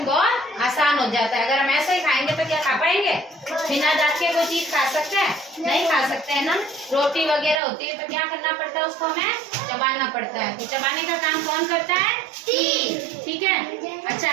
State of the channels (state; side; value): drops out; left; at 7.6 s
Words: बहुत आसान हो जाता है। अगर हम ऐसे ही खाएंगे तो क्या खा पाएंगे, बिना दांत के कोई चीज खा सकते हैं, नहीं खा सकते हैं ना। रोटी वगैरह होती है तो क्या करना पड़ता है, उसको हमें चबाना पड़ता है। तो चबाने का काम कौन करता है, टीथ, ठीक है। अच्छा,